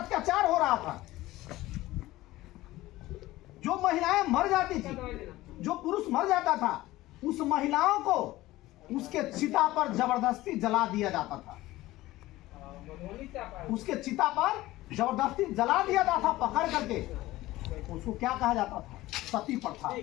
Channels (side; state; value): right; quieter; 17.3 dB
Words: हो रहा था। जो महिलाएं मर जाती थी, जो पुरुष मर जाता था, उस महिलाओं को उसके चिता पर जबरदस्ती जला दिया जाता था। उसके चिता पर जबरदस्ती जला दिया जाता था पकड़ करके। उसको क्या कहा जाता था? सती प्रथा।